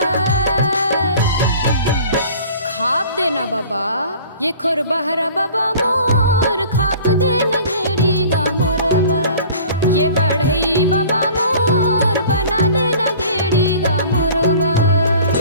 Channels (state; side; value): inverted; both; correlation -0.46